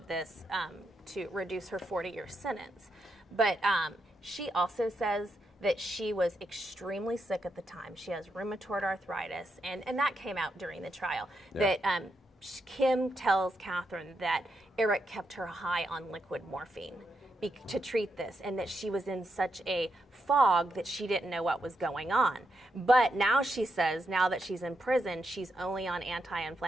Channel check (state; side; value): normal; both; correlation 0.83